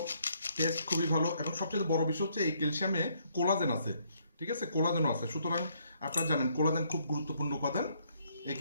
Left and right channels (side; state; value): both; inverted; correlation -0.69